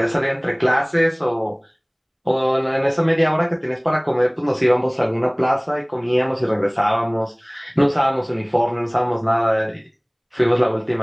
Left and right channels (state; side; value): identical; both; correlation 1.00